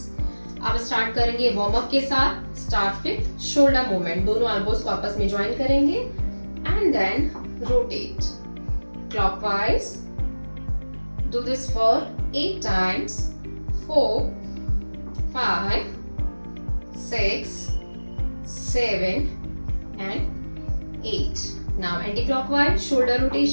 अब स्टार्ट करेंगे वार्म अप के साथ। Start with shoulder movement. दोनों एल्बोज को आपस में ज्वाइन करेंगे and then rotate clockwise. Do this for 8 times. 4 5 6 7 and 8. Now anti-clockwise shoulder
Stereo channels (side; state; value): both; inverted; correlation -1.00